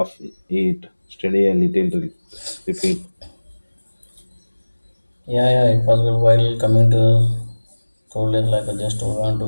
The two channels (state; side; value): inverted; both; correlation -1.00